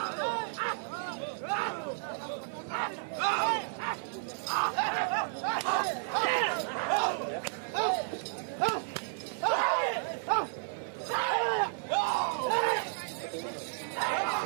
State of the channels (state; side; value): silent; left; 56 dB below the other